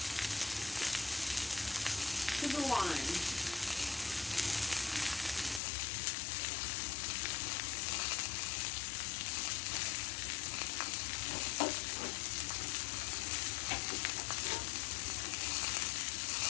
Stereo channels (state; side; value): drops out; right; at 5.6 s